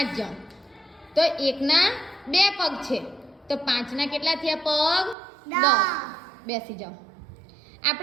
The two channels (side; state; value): left; drops out; at 5.2 s